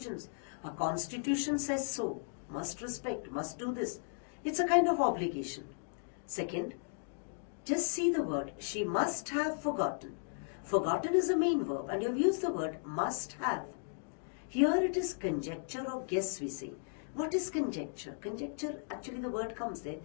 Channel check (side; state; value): right; silent; digital silence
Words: Our constitution says so. Must respect, must do this. It's a kind of obligation. Second, just see the word, she must have forgotten. Forgotten is a main verb, and you've used the word must have. Here it is conjecture or guess, we say. What is conjecture? Conjecture, actually the word comes there,